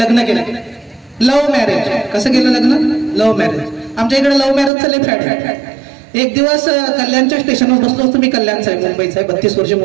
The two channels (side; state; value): left; drops out; at 4.7 s